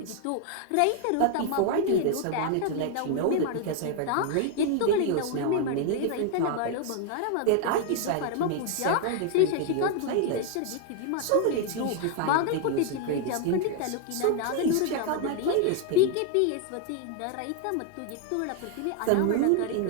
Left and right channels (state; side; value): different; both; correlation 0.00